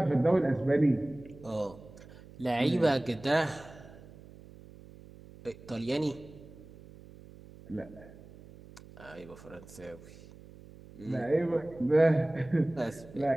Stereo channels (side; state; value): right; noise; hum, 20 dB below the sound